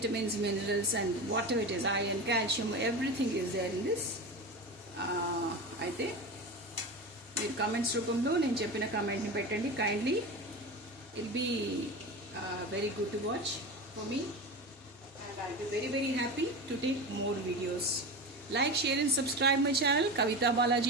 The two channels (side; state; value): both; normal; correlation 0.26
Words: minerals and whatever it is, iron, calcium, everything is there in this. అయితే మీరు comments రూపంలో నేను చెప్పిన కామెంట్ని పెట్టండి. Kindly ill be very good to watch for me and I'll be very very happy to take more videos. Like, share and subscribe my channel. Kavita